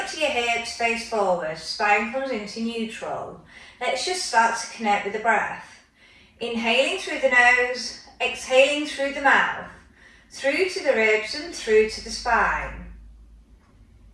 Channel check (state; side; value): identical; both; correlation 1.00